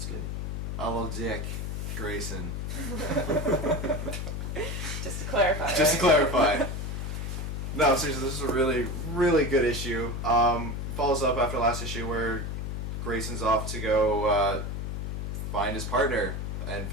good. I love Dick Grayson. Just to clarify. Just to clarify. No, seriously, this is a really, really good issue. Follows up after last issue where Grayson's off to go find his partner and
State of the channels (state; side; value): noise; left; hum, 4 dB below the sound